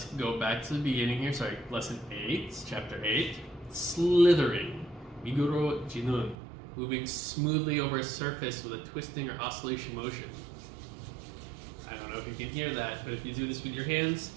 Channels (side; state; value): left; drops out; at 6.4 s